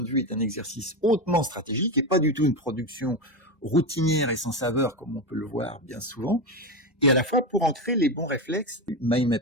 vue est un exercice hautement stratégique et pas du tout une production routinière et sans saveur comme on peut le voir bien souvent, et à la fois pour ancrer les bons réflexes du mind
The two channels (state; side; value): normal; both; correlation 0.15